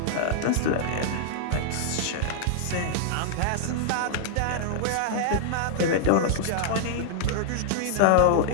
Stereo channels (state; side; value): different; both; correlation -0.01